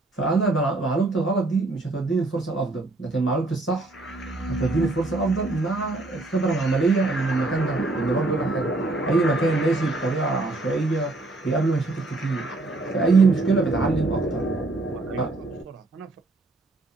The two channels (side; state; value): left; quieter; 3.1 dB